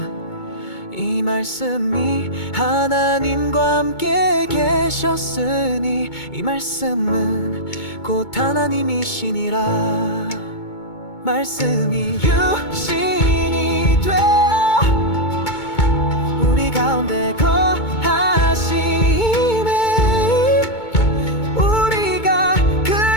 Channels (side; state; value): right; late; 2.2 ms